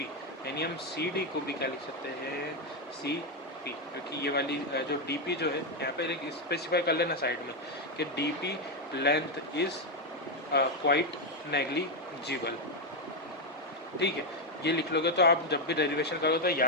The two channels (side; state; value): both; normal; correlation 0.04